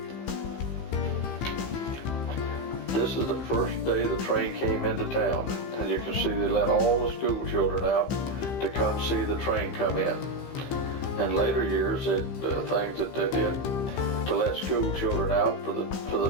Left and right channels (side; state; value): right; late; 15 ms